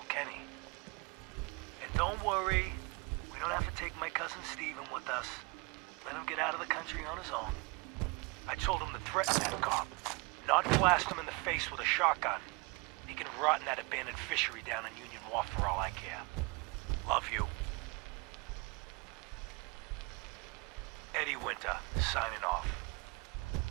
And don't worry, we don't have to take my cousin Stephen with us. Let him get out of the country on his own. I told him to threaten that cop, not blast him in the face with a shotgun. He can rot in that abandoned fishery down in Union Wharf for all I care. Love you. Eddie Winter, signing off.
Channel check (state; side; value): quieter; left; 28.7 dB